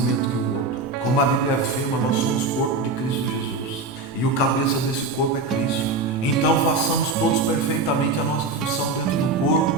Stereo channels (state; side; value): quieter; left; 3.5 dB